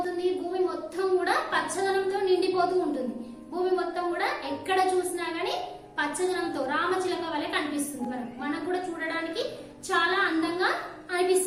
భూమి మొత్తం కూడా పచ్చదనంతో నిండిపోతూ ఉంటుంది. భూమి మొత్తం కూడా ఎక్కడ చూసినా గానీ పచ్చదనంతో రామచిలక వలె కనిపిస్తుంది. మనకు కూడా చూడడానికి చాలా అందంగా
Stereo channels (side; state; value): both; identical; correlation 1.00